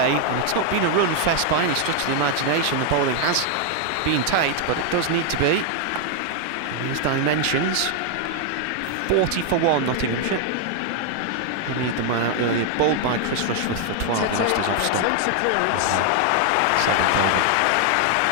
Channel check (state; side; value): different; both; correlation 0.00